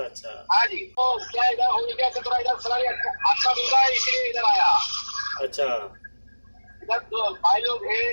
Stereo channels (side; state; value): both; inverted; correlation -1.00